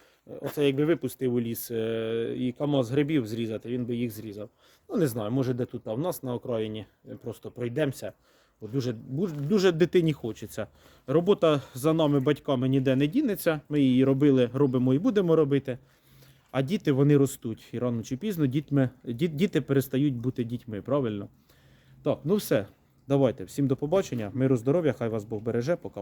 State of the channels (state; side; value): identical; both; correlation 1.00